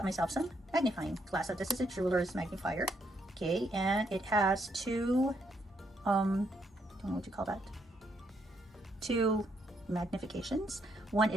myself some magnifying glass. So this is a jeweler's magnifier. Okay, and it has 2, I don't know what you call that. 2 magnifications. One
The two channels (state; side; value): normal; both; correlation 0.75